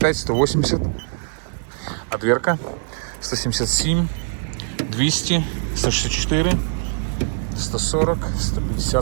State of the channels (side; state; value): left; silent; digital silence